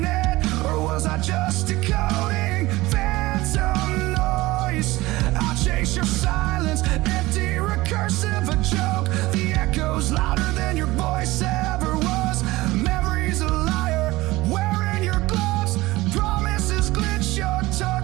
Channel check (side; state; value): left; quieter; 19.4 dB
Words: it? Or was I just decoding phantom noise? I'll chase your silence, empty, recursive, a joke. The echo's louder than your voice ever was. Memory's a liar, wearing your gloves. Promises glitch, your